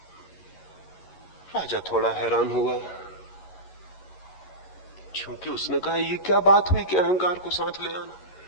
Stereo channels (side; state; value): right; late; 11 ms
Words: राजा थोड़ा हैरान हुआ, क्योंकि उसने कहा ये क्या बात हुई कि अहंकार को साथ ले